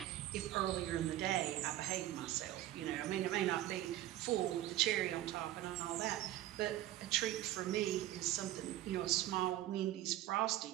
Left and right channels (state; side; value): quieter; left; 14.2 dB